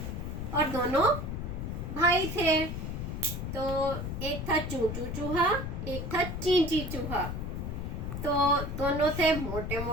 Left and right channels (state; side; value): noise; left; rumble, 4 dB below the sound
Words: और दोनों भाई थे। तो एक था चूचू चूहा, एक था चींची चूहा। तो दोनों थे मोटे